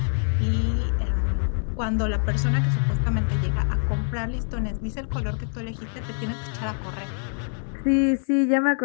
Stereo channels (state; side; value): silent; right; 62 dB below the other